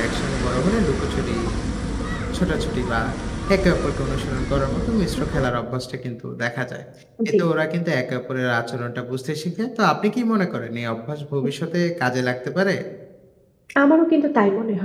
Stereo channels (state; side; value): identical; both; correlation 1.00